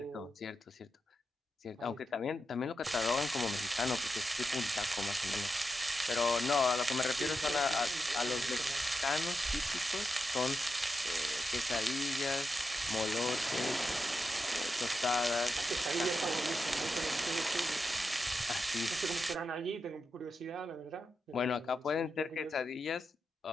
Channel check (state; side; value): normal; both; correlation 0.88